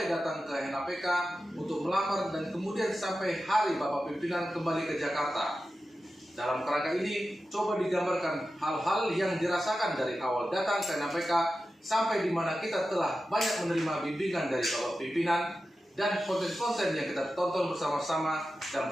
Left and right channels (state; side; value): normal; both; correlation 0.93